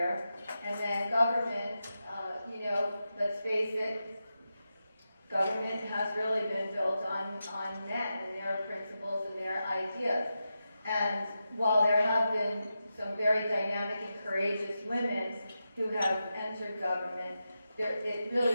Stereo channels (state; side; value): inverted; both; correlation -0.89